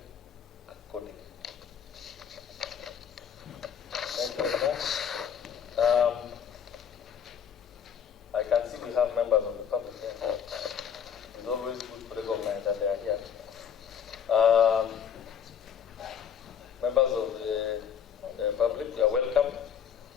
accordingly. Thank you very much. I can see we have members of the public here. It's always good to recognize that they are here. Members of the public, you are welcome.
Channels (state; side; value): quieter; right; 8.0 dB